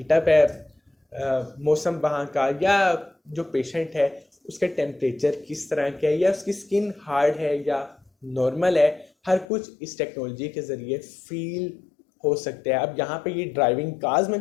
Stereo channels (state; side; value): drops out; right; at 9.5 s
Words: है मौसम वहाँ का, या जो पेशेंट है उसका टेम्परेचर किस तरह का है, या उसकी स्किन हार्ड है या नॉर्मल है, हर कुछ इस टेक्नोलॉजी के ज़रिए फील हो सकते हैं। अब यहाँ पे ये ड्राइविंग कार्स में